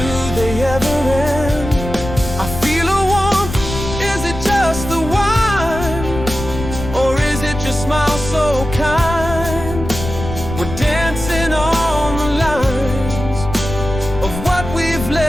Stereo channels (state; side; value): noise; left; rumble, 8 dB below the sound